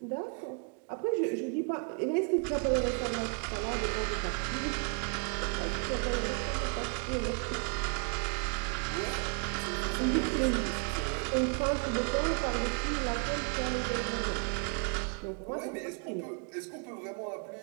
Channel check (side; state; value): left; quieter; 36.5 dB